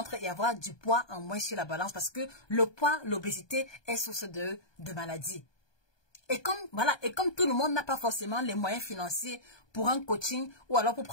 et avoir du poids en moins sur la balance. Parce que le poids, l'obésité est source de maladies. Et comme, voilà, et comme tout le monde n'a pas forcément les moyens financiers pour un coaching ou alors pour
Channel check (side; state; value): right; late; 1.2 ms